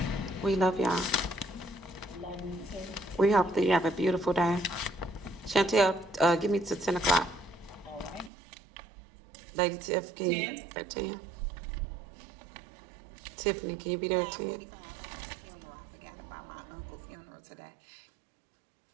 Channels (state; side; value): drops out; left; at 8.3 s